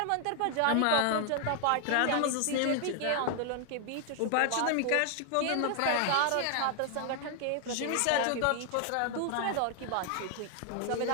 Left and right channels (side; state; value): both; different; correlation 0.00